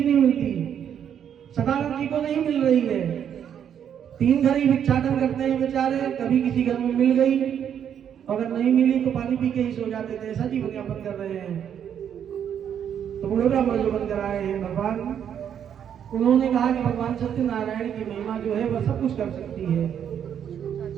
नहीं मिलती। सदानंद जी को नहीं मिल रही है, 3 घर ही भिक्षाटन करते हैं बेचारे, कभी किसी घर में मिल गई, अगर नहीं मिली तो पानी पी के ही सो जाते थे, ऐसा जीवन यापन कर रहे हैं। तो बूढ़े ब्राह्मण जो बनकर आए हैं भगवान, उन्होंने कहा कि भगवान सत्यनारायण की महिमा जो है वह सब कुछ कर सकती है।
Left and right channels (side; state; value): left; quieter; 8.9 dB